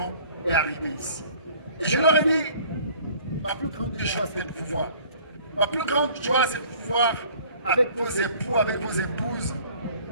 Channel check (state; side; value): inverted; both; correlation -0.52